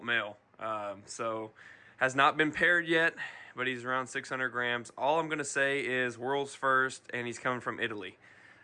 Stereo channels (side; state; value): both; identical; correlation 1.00